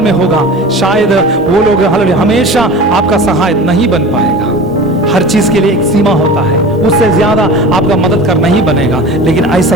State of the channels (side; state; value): both; normal; correlation 0.36